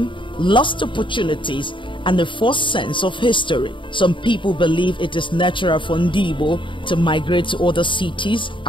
lost opportunities, and a false sense of history. Some people believe it is natural for Ndigbo to migrate to other cities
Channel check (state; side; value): late; right; 0.24 ms